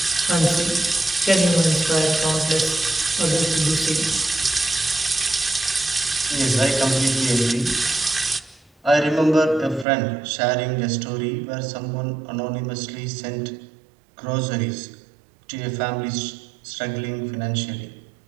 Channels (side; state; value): left; drops out; at 9.9 s